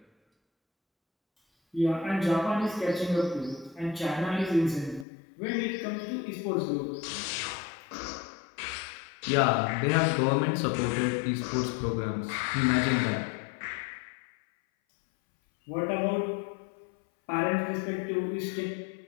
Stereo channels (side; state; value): right; drops out; at 5.1 s